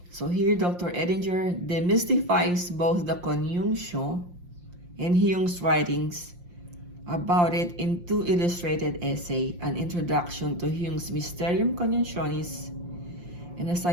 So here, Dr. Edinger demystifies both the CONIUNCTIO and Jung's writings about it in two illustrated essays, an introduction to Jung's Mysterium Coniunctionis and a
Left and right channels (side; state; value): left; late; 5.7 ms